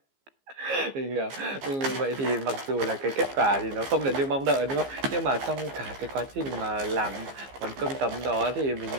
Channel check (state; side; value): late; left; 15 ms